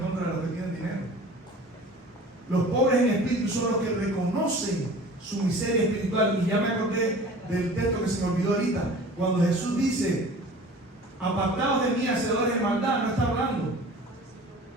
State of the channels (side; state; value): both; normal; correlation 0.43